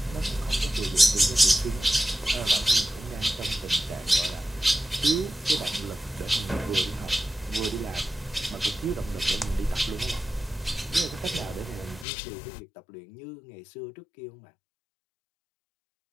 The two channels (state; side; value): drops out; right; at 12.1 s